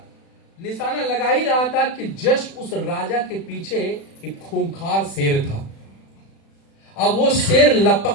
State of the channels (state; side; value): late; right; 36 ms